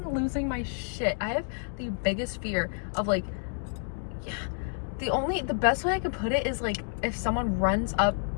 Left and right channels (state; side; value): silent; right; digital silence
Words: losing my shit. I have the biggest fear of like, yeah, the best way I can put it is like if someone runs up